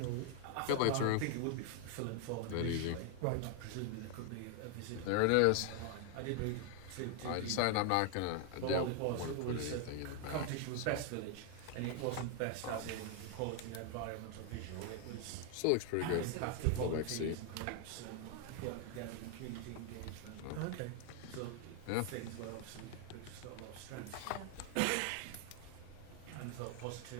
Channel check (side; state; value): both; different; correlation 0.00